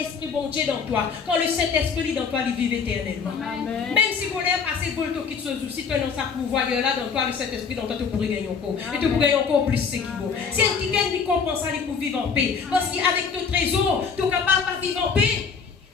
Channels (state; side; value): quieter; right; 5.8 dB